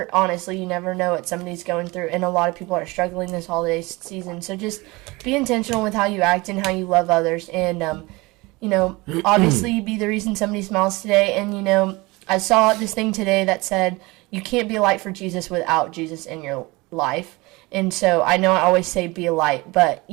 know what somebody's going through, and a lot of people are struggling this holiday season. So just be intentional with how you act and how you love others, and obviously be the reason somebody smiles today. And I saw this thing today that said you can't be a light for Jesus without Jesus in your life. And so I know I always say be a light, but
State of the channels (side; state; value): left; quieter; 23.2 dB